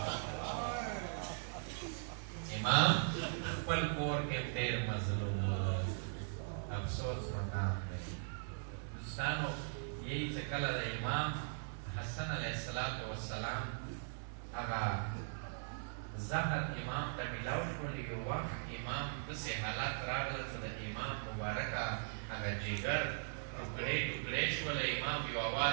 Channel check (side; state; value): left; silent; digital silence